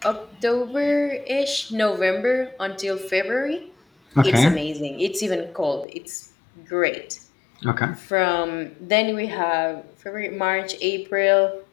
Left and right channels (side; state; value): right; drops out; at 5.9 s